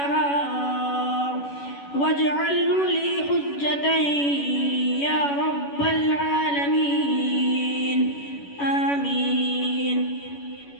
واجعله لي حجة يا رب العالمين. آمين.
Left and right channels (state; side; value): late; right; 11 ms